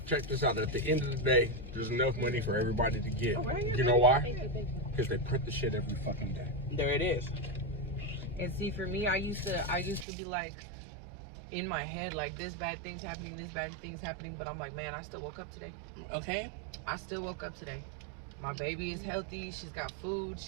Check this out. At the end of the day, there's enough money for everybody to get. Oh, right. You know why? Thank you. Because they print the shit every fucking day. There it is. And see, for me, I used to be like, in my head, like, this bad thing's happening, but I'm like, man, I still woke up today. Okay. I still woke up today. My baby is healthy. She's got food.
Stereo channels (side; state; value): left; drops out; at 10.1 s